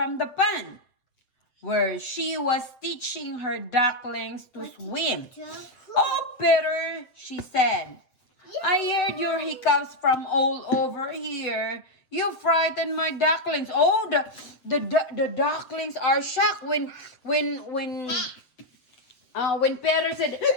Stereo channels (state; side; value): late; right; 7.5 ms